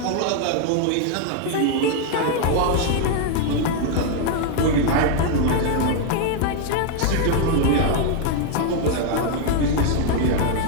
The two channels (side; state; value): both; different; correlation 0.00